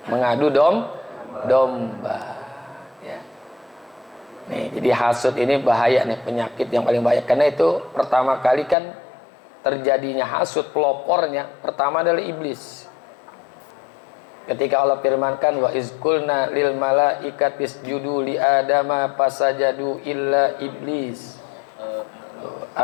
mengadu domba. Ya. Nih, jadi hasud ini bahaya nih, penyakit yang paling bahaya. Karena itu pertama kali kan terjadinya hasud, pelopornya pertama adalah iblis. Ketika Allah firmankan, wa izkulna lil malaikati isjudu li adama fasajadu illa iblis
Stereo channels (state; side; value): drops out; right; at 8.8 s